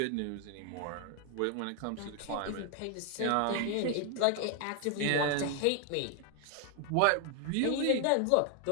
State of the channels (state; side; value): different; both; correlation 0.01